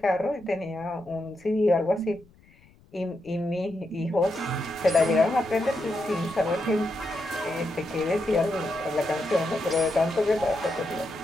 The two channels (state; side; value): noise; left; rumble, 28 dB below the sound